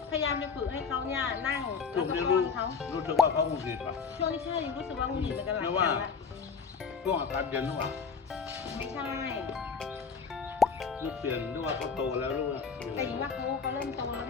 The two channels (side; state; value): right; quieter; 5.5 dB